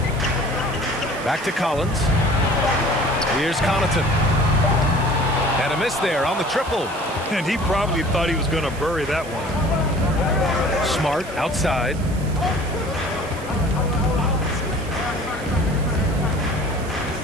Back to Collins. Here's Connaughton. And a miss there on the triple. And he probably thought he was going to bury that one. Smart outside.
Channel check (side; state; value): right; noise; hiss, 19 dB below the sound